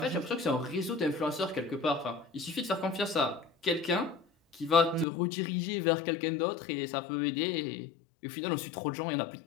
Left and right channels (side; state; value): right; drops out; at 5.1 s